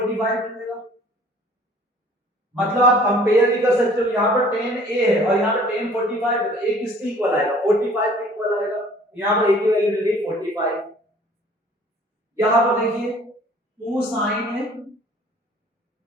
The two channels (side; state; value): both; normal; correlation 0.52